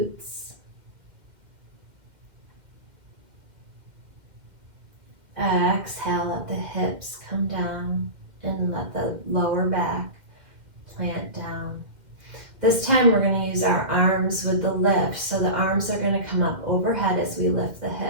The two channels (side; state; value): left; late; 2.1 ms